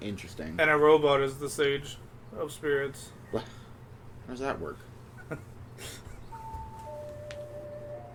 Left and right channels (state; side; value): identical; both; correlation 1.00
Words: Interesting. And a robot is the sage of spirits. How does that work?